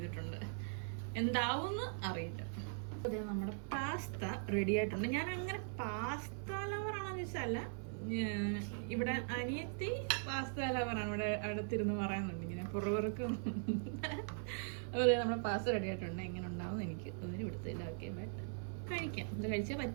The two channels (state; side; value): silent; left; 51 dB below the other